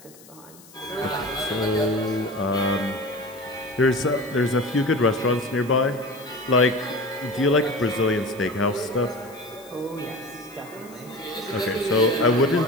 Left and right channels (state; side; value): noise; left; hiss, 23 dB below the sound